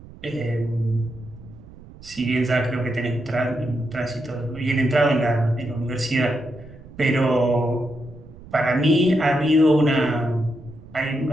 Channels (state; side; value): noise; right; rumble, 19 dB below the sound